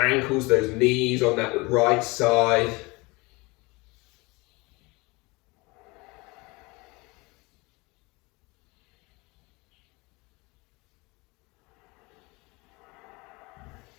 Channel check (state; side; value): quieter; right; 25.0 dB